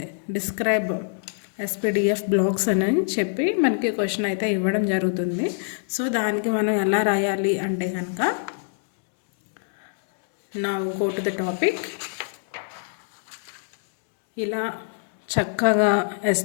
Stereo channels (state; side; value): silent; right; digital silence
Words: డిస్క్రైబ్ ఎస్పీడిఎఫ్ బ్లాక్స్ అని చెప్పి మనకి క్వశ్చన్ అయితే ఇవ్వడం జరుగుతుంది. సో దానికి మనం ఎలా రాయాలి అంటే కనుక, now go to the topic. ఇలా చక్కగా